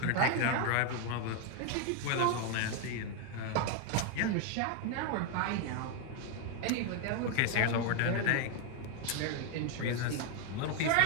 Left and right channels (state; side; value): different; both; correlation 0.01